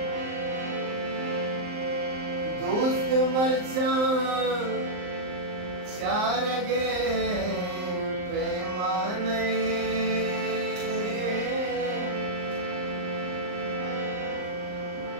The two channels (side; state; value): left; late; 39 ms